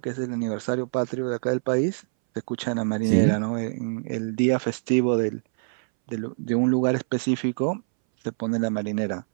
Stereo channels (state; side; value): silent; left; 61 dB below the other